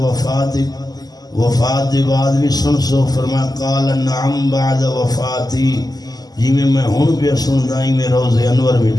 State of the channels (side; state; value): right; late; 0.19 ms